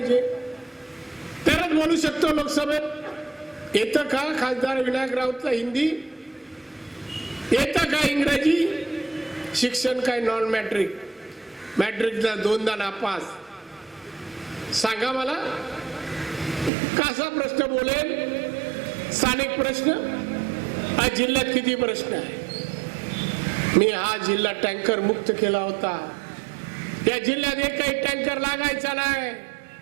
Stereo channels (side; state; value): left; drops out; at 16.7 s